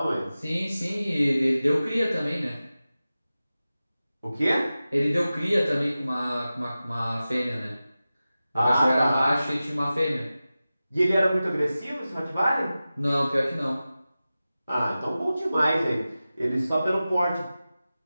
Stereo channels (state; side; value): inverted; both; correlation -0.95